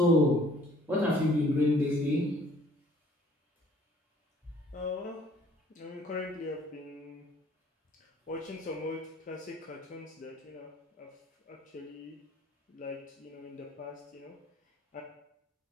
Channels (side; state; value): both; normal; correlation 0.57